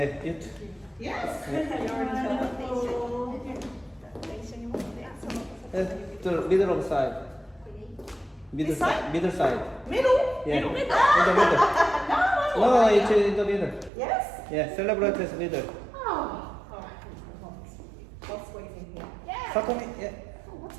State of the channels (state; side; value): drops out; left; at 13.9 s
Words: you. Yes. The middle of side. Middle This side? side. Middle side. Middle? Yeah. Middle? In the middle. No, it's in the middle. Yes? Yeah, celebrate as middle. Oh. Alright. I'll squeeze in here. Yeah. Satomi, yeah. Oh, what's